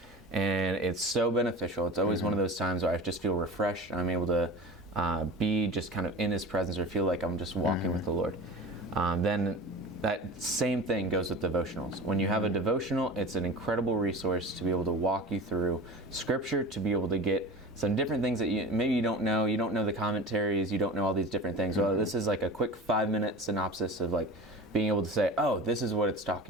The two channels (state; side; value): normal; both; correlation 0.33